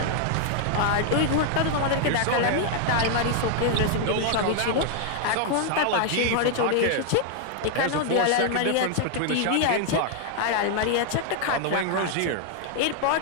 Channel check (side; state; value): both; different; correlation 0.00